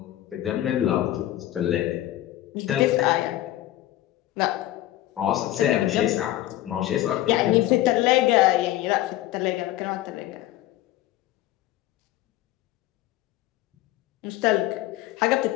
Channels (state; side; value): quieter; right; 14.7 dB